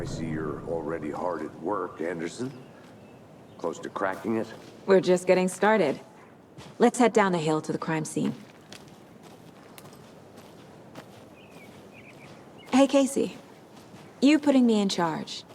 see you're already hard at work, Anderson. Close to cracking it? We're just getting started. Let's head down the hill to the crime scene. Hey, Casey. You putting me in charge.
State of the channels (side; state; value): both; identical; correlation 1.00